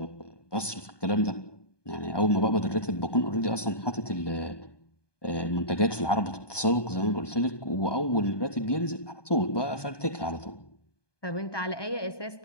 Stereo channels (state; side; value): late; right; 1.2 ms